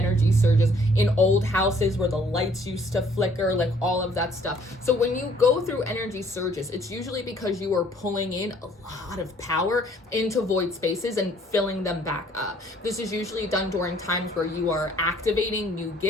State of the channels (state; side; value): normal; both; correlation 0.61